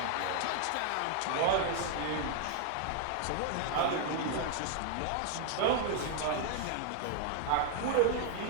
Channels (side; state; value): both; different; correlation 0.00